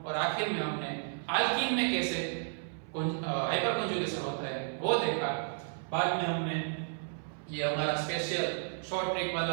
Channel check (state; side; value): silent; left; 56 dB below the other